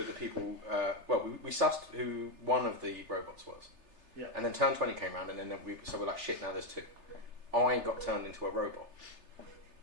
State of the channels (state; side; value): late; left; 3.3 ms